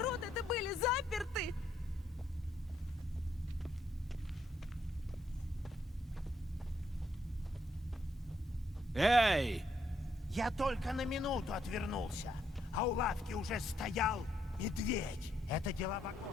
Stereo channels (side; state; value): both; normal; correlation 0.75